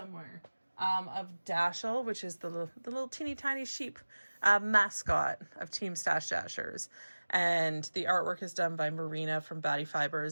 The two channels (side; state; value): both; inverted; correlation -1.00